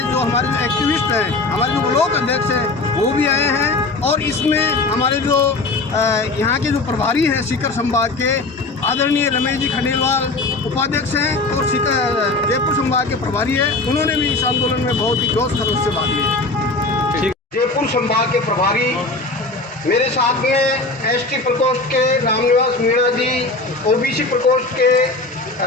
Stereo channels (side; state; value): right; quieter; 3.3 dB